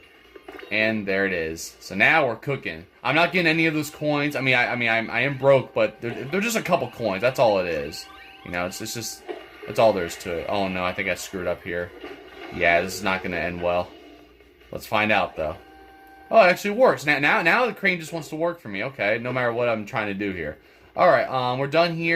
And there it is. So now we're cooking. I'm not getting any of those coins. I am broke, but they're just a couple coins. That's all it is. You know, it's just... That's all there is to it. Oh no, I think I screwed up here. Yeah, this is not going to end well. Let's find out, though. Oh, it actually works. Now the crane just wants to work for me. Okay, no matter what I'm trying to do here. Alright, we're done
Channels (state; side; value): identical; both; correlation 1.00